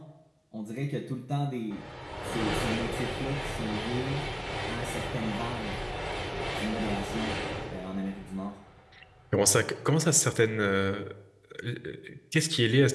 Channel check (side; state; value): both; identical; correlation 1.00